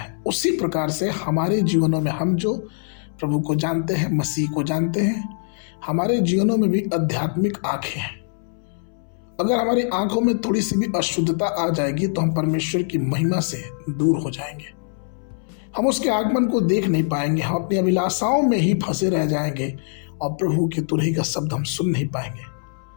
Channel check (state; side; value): silent; right; 64 dB below the other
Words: उसी प्रकार से हमारे जीवनों में हम जो प्रभु को जानते हैं, मसीह को जानते हैं, हमारे जीवनों में भी आध्यात्मिक आंखें हैं। अगर हमारी आंखों में थोड़ी सी भी अशुद्धता आ जाएगी तो हम परमेश्वर की महिमा से दूर हो जाएंगे। हम उसके आगमन को देख नहीं पाएंगे, हम अपनी अभिलाषाओं में ही फंसे रह जाएंगे और प्रभु की तुरही का शब्द हम सुन नहीं पाएंगे।